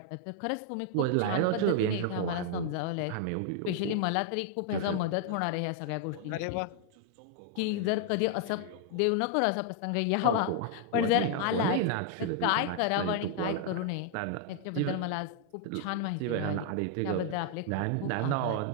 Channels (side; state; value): both; different; correlation 0.00